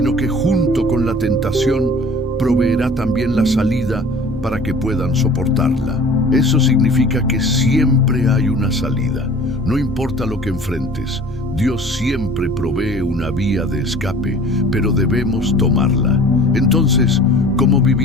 que junto con la tentación proveerá también la salida para que puedan soportarla. Eso significa que siempre hay una salida. No importa lo que enfrentes, Dios siempre provee una vía de escape, pero debemos tomarla. Entonces, ¿cómo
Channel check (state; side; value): noise; right; hum, 22 dB below the sound